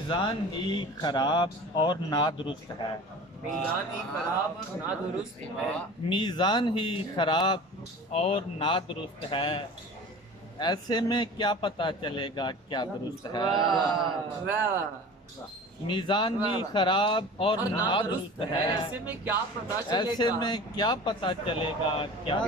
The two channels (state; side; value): normal; both; correlation 0.38